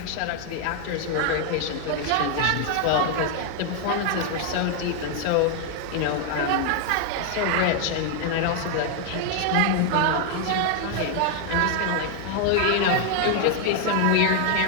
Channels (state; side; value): different; both; correlation 0.00